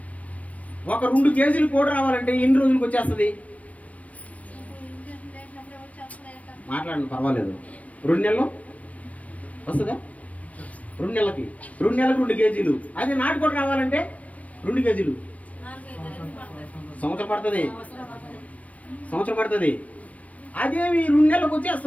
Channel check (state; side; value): late; right; 0.067 ms